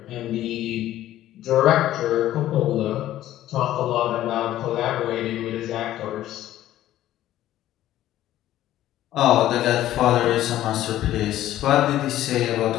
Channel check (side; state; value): right; quieter; 13.5 dB